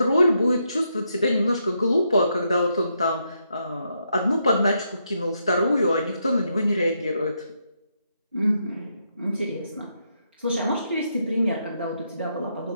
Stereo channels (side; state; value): both; inverted; correlation -0.79